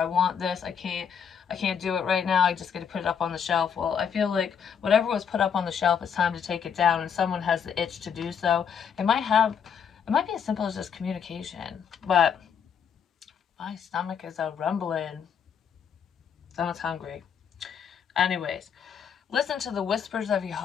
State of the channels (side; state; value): right; quieter; 7.4 dB